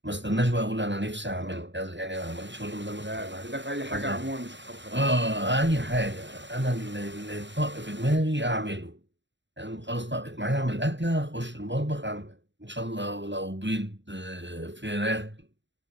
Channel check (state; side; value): late; left; 0.53 ms